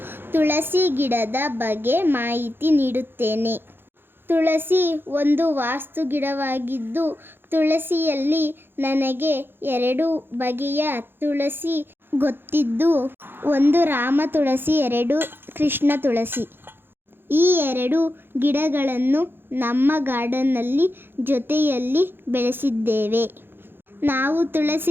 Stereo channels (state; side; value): late; left; 0.10 ms